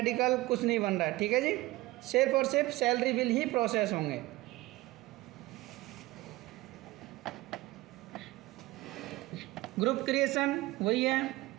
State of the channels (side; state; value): left; quieter; 19.3 dB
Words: कुछ नहीं बन रहा है। ठीक है जी, सिर्फ और सिर्फ सैलरी बिल ही प्रोसेस होंगे। ग्रुप क्रिएशन वही है।